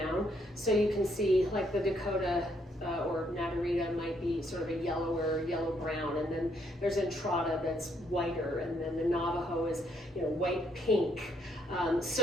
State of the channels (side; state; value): both; normal; correlation 0.73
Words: So you can see like the Dakota or Nadarita might be sort of a yellower, yellow-brown, and then there's Entrada that's whiter, and then the Navajo is white-pink.